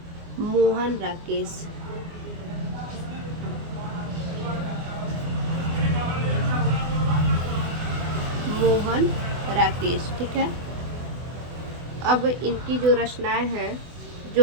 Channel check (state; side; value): late; left; 24 ms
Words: मोहन राकेश। मोहन राकेश। ठीक है। अब इनकी जो रचनाएं हैं,